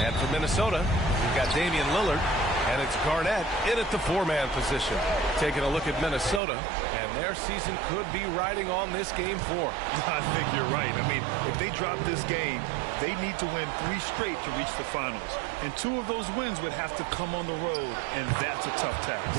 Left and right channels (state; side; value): drops out; left; at 6.4 s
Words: And for Minnesota, we've got Damian Lillard. And it's Garnett in at the four-man position. Taking a look at Minnesota, and their season could be riding on this Game 4. I think you're right. I mean, if they drop this game, they need to win 3 straight to reach the finals. And 2 of those wins would have to come on the road, and that's a tough task.